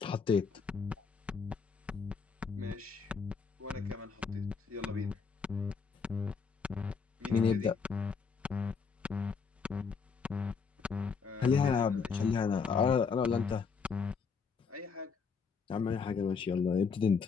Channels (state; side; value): quieter; right; 5.5 dB